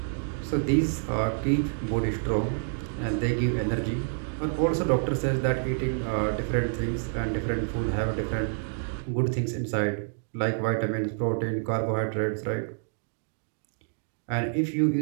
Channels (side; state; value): left; silent; digital silence